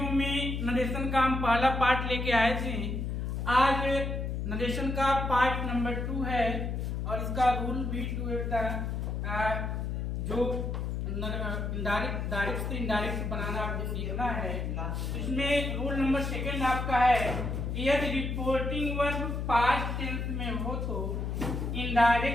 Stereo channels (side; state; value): left; noise; hum, 2 dB below the sound